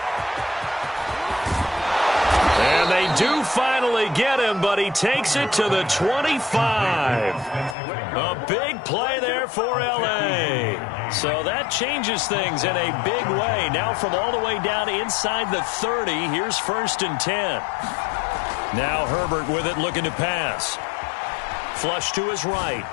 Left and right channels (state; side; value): drops out; right; at 7.8 s